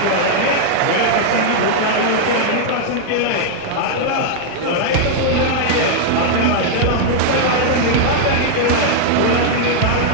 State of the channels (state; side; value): different; both; correlation -0.01